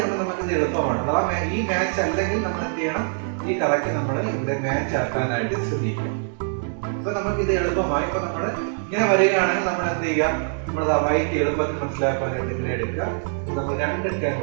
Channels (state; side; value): silent; left; digital silence